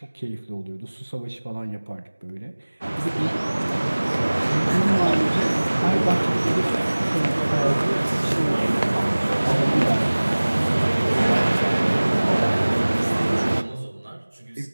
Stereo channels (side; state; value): both; inverted; correlation -1.00